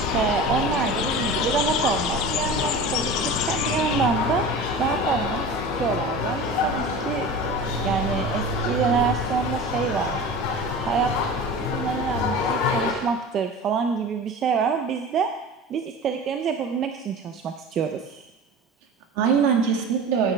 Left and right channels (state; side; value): normal; both; correlation 0.34